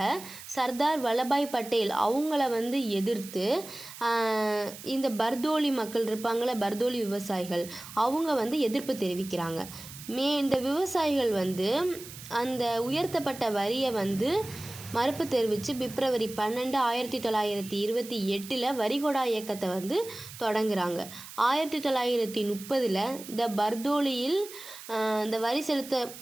சர்தார் வல்லபாய் பட்டேல் அவங்கள எதிர்த்து இந்த பர்தோலி மக்கள் இருப்பாங்கள, பர்தோலி விவசாயிகள், அவங்க எதிர்ப்பு தெரிவிக்கிறாங்க. இந்த விவசாயிகள் அந்த உயர்த்தப்பட்ட வரியை மறுப்பு தெரிவித்து பிப்ரவரி 12 1928 வரிகொடா இயக்கத்தை தொடங்குறாங்க. 1930 இந்த பர்தோலியில் இந்த வரி செலுத்த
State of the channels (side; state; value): right; noise; hiss, 14 dB below the sound